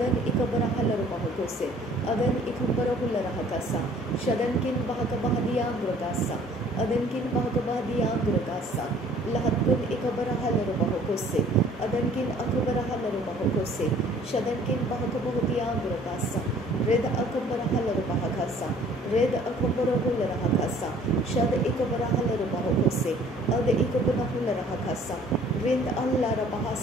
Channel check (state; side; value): normal; both; correlation 0.55